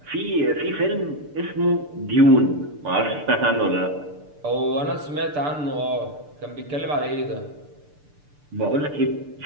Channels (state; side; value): late; left; 6.8 ms